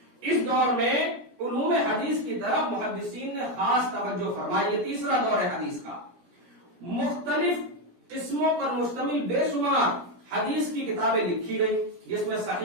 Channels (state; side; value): late; left; 17 ms